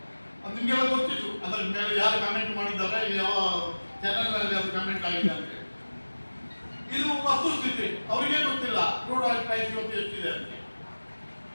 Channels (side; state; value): both; inverted; correlation -1.00